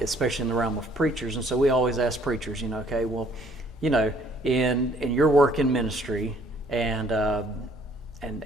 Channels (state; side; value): normal; both; correlation 0.61